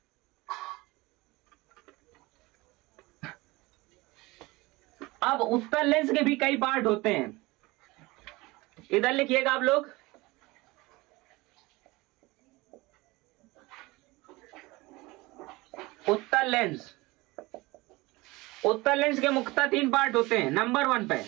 अब उत्तल लेंस के भी कई पार्ट होते हैं, इधर लिखिएगा आप लोग। उत्तल लेंस, उत्तल लेंस के मुख्यतः 3 पार्ट होते हैं। नंबर 1 पे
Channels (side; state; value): left; quieter; 21.9 dB